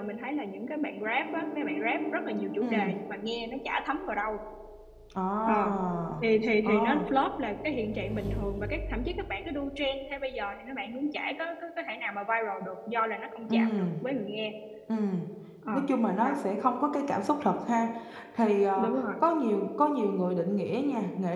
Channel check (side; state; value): both; identical; correlation 1.00